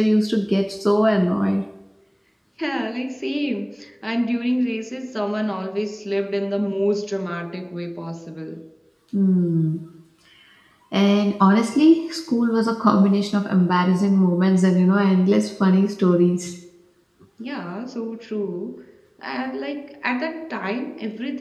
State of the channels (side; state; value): both; identical; correlation 1.00